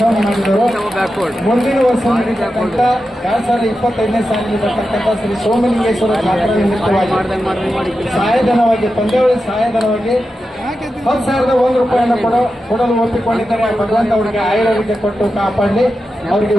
ಮಾಡಿದರು. ಮುಂದಿನ ವರ್ಷ ನಡೀತಕ್ಕಂಥ 2025ನೇ ಸಾಲಿಗೆ ಬರ್ತಕ್ಕಂಥ ಶ್ರೀ ಸೋಮಲಿಂಗೇಶ್ವರ ಜಾತ್ರಾ ನಿಮಿತ್ತವಾಗಿ ಸಹಾಯಧನವಾಗಿ, ಪಂದ್ಯಾವಳಿ ಸಹಾಯಧನವಾಗಿ 10,001 ರೂಪಾಯಿಯನ್ನು ಕೊಡಲು ಒಪ್ಪಿಕೊಂಡಿದ್ದಾರೆ. ಭಗವಂತ ಅವರಿಗೆ ಆಯುರ್ವೇದ್ಯ ಕೊಟ್ಟು ಕಾಪಾಡಲಿ, ಅವರಿಗೆ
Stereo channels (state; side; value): normal; both; correlation 0.90